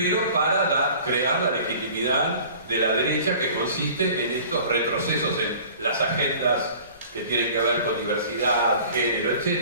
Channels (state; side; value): inverted; both; correlation -0.46